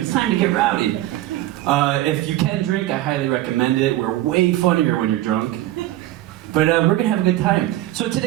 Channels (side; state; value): left; quieter; 15.1 dB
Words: time to get rowdy. If you can drink, I highly recommend it. We're way funnier when you're drunk. But we're going to have a good time. So